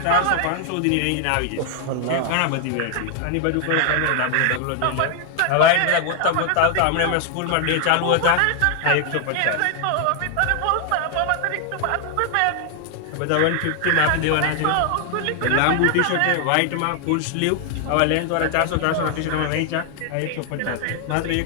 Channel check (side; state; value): both; different; correlation 0.00